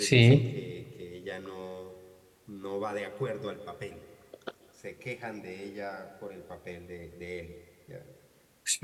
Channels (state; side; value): identical; both; correlation 1.00